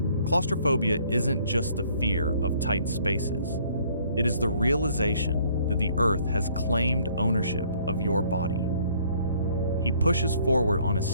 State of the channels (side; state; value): both; inverted; correlation -0.61